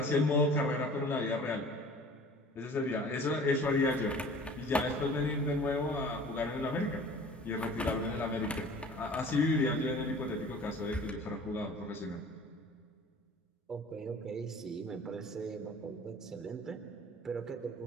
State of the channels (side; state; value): both; normal; correlation 0.46